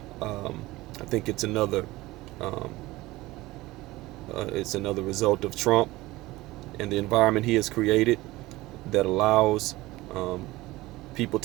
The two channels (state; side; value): quieter; left; 19.1 dB